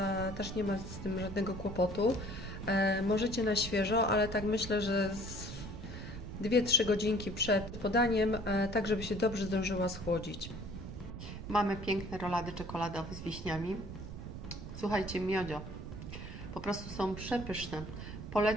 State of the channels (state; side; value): noise; right; rumble, 9 dB below the sound